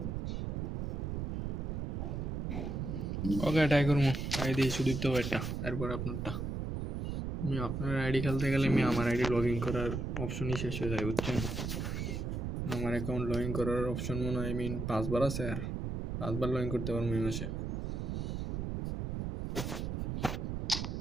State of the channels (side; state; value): right; noise; rumble, 2 dB below the sound